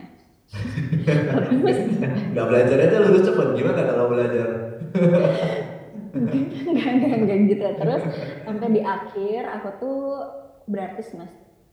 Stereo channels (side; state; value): both; identical; correlation 1.00